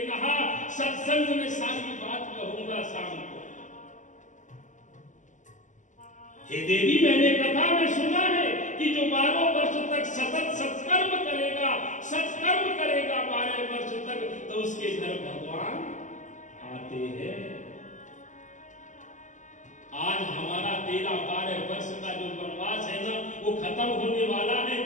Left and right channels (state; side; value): late; right; 0.36 ms